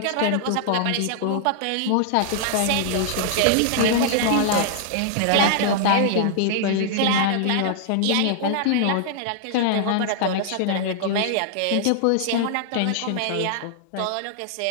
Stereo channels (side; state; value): both; different; correlation -0.01